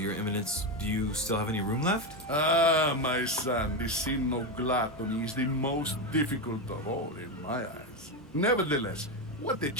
Your Eminence, do you still have any room left? Ah, my son, the sin of gluttony is the most difficult of all in my eyes. Nevertheless, what a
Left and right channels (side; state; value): both; normal; correlation 0.11